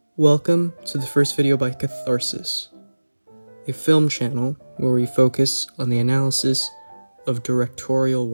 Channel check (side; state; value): both; inverted; correlation -1.00